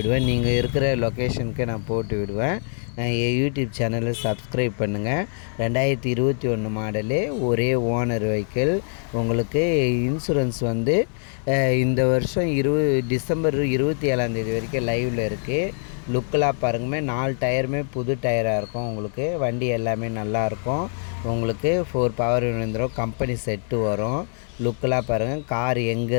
நீங்கள் இருக்கிற லொக்கேஷனுக்கு நான் போட்டு விடுவேன். என் யூடியூப் சேனலை சப்ஸ்கிரைப் பண்ணுங்கள். 2021 மாடலு, ஒரே ஓனர் வெஹிக்கிள். உங்களுக்கு இன்சூரன்ஸ் வந்து இந்த வருஷம் டிசம்பர் 27 வரைக்கும் லைவில் இருக்குது. லுக்கெலாம் பாருங்கமே, 4 டயருமே புது டயராக இருக்கும் உங்களுக்கு. வண்டி எல்லாமே நல்லாயிருக்கும் உங்களுக்கு. 4 பவர் விழுந்துடும். கம்பெனி செட்டு வரும். லுக்கெலாம் பாருங்கள். கார் எங்கே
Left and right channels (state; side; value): silent; right; 63 dB below the other